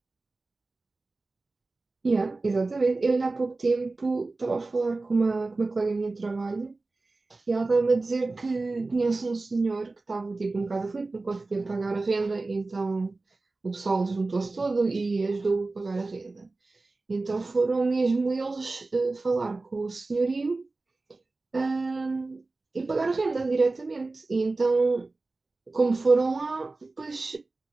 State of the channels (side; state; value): left; quieter; 3.4 dB